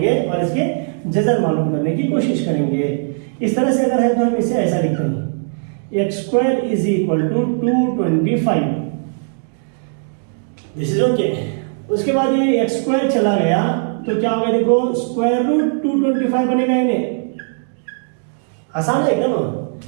और इसके जज़र मालूम करने की कोशिश करेंगे। इस तरह से अगर है तो हम इसे ऐसा लिखते हैं, x square is equal to 225, this is okay. उसके बाद ये x स्क्वायर चला गया तो क्या होगा, देखो स्क्वायर रूट 225 बनेगा, इन्हें आसान है एकदम,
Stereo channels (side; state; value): left; silent; digital silence